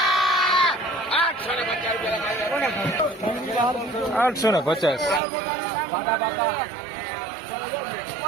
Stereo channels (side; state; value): left; drops out; at 5.2 s